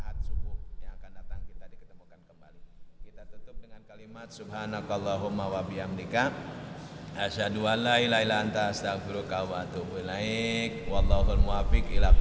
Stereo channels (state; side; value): identical; both; correlation 1.00